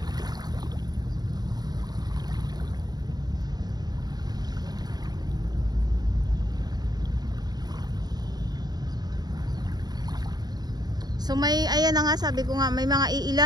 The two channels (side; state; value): left; late; 0.20 ms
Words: So ayan na nga, sabi ko nga, may mga